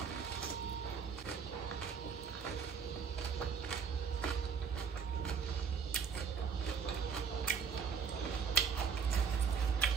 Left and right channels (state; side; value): quieter; left; 6.2 dB